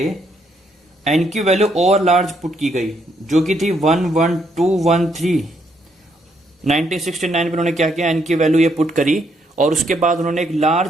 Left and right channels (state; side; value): normal; both; correlation 0.74